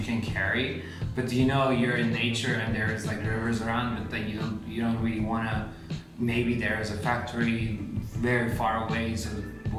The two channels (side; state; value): both; identical; correlation 1.00